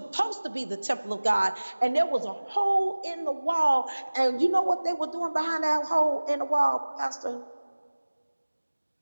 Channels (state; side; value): inverted; both; correlation -1.00